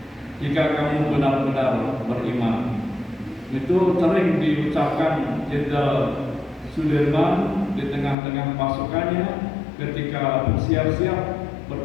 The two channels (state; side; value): drops out; right; at 8.2 s